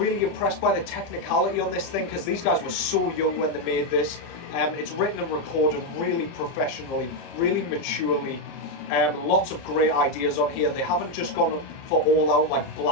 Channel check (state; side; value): late; right; 30 ms